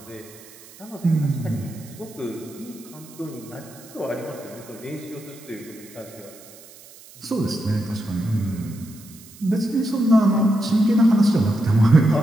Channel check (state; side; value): noise; right; hiss, 21 dB below the sound